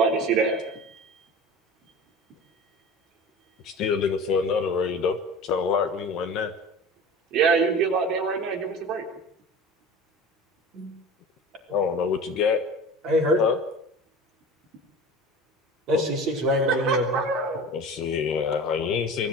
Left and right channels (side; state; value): both; normal; correlation 0.36